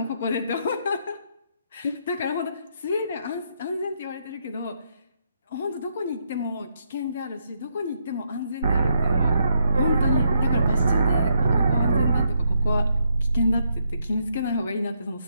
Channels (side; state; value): both; inverted; correlation -0.76